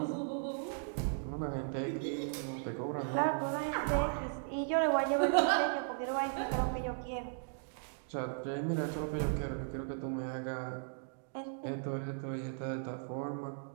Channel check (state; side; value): silent; left; digital silence